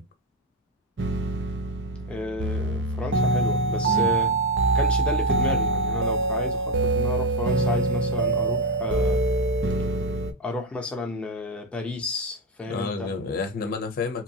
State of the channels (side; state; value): both; normal; correlation 0.07